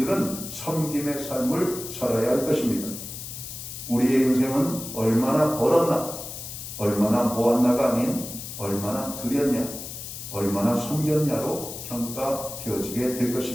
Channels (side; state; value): left; noise; hiss, 9 dB below the sound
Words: 섬김의 삶을 살아야 할 것입니다. 우리의 인생은 얼마나 벌었나, 얼마나 모았나가 아닌 얼마나 드렸냐, 얼마나 섬겼냐로 평가되어지게 될